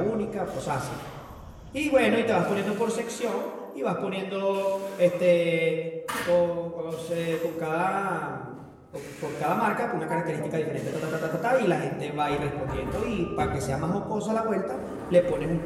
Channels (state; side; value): identical; both; correlation 1.00